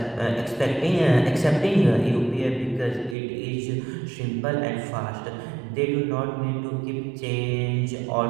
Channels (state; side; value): drops out; left; at 3.2 s